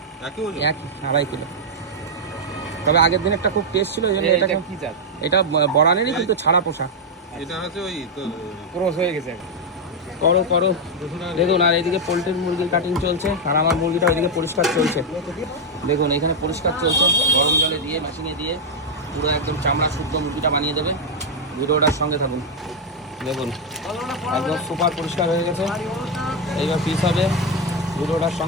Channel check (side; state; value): both; normal; correlation 0.00